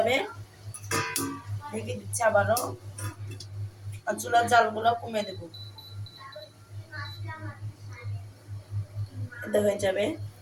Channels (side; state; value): both; identical; correlation 1.00